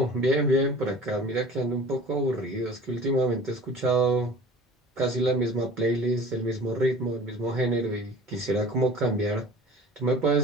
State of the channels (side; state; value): both; normal; correlation 0.43